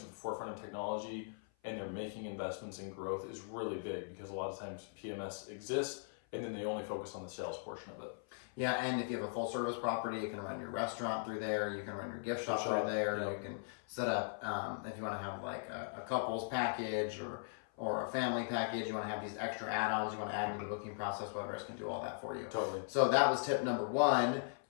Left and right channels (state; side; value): silent; right; 52 dB below the other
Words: at the forefront of technology and they're making investments in growth is really big, because a lot of times PMS exists and then they only focus on the sales portion of it. Yeah, and if you have a full service property, you can run your restaurant through there, you can run your gift shop through there, you can set up, if you want to have like a couples package or a family package, you want to have these extra add-ons, you want to add into the booking process, WebRes can do all that for you. Totally. So that was tip number one.